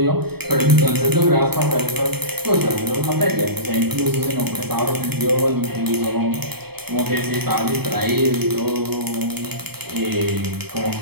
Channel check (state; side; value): late; left; 0.97 ms